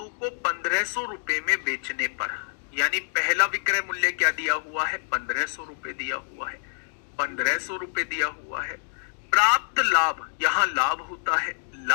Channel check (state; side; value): silent; right; digital silence